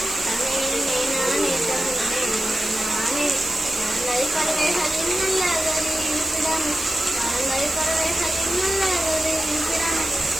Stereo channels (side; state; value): right; noise; hiss, 9 dB below the sound